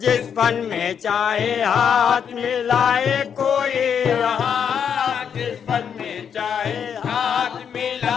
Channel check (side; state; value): right; quieter; 7.7 dB